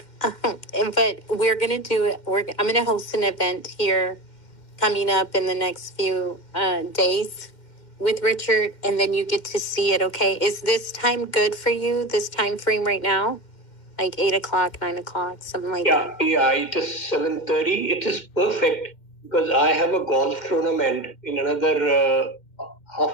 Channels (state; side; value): late; right; 2.1 ms